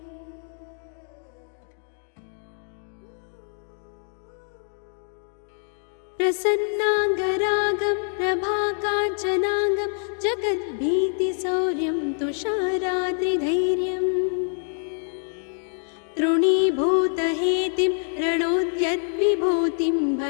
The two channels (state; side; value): silent; right; 59 dB below the other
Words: प्रसन्नाङ्गरागं प्रभाकाञ्चनाङ्गं जगद्भीतिशौर्यं तुषाराद्रिधैर्यं तृणीभूतहेतिं रणोद्यद्विभूतिं